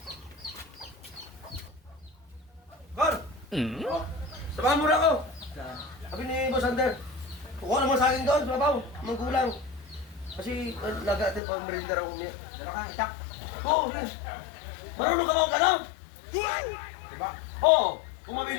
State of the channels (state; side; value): drops out; right; at 11.4 s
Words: Kor! O, samahan mo na ako. Sabi ni Boss Ander, kukuha naman sa akin doon, mabaw, manggulang. Kasi laga natin pang merinda raw umiyak. Dala ka, itak. Oo, sige. Marunong ka ba o gano'n? Diba? Oo. Kung